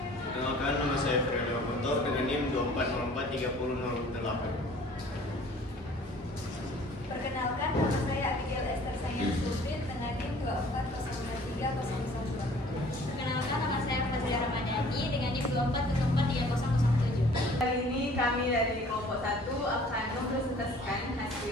Perkenalkan, nama saya Ferdinand Guntur dengan NIM 24043008. Perkenalkan, nama saya Abigail Esther Sayang Sulfit dengan NIM 24043002. Perkenalkan, nama saya Fazlia Ramadhani dengan NIM 24043007. Kali ini kami dari kelompok 1 akan mempresentasikan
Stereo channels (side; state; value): both; normal; correlation 0.52